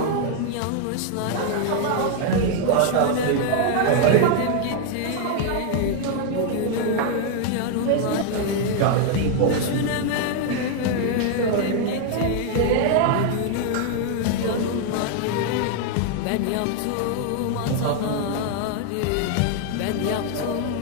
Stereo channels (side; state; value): both; different; correlation 0.00